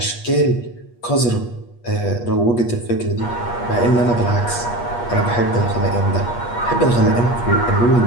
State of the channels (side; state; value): right; late; 8.4 ms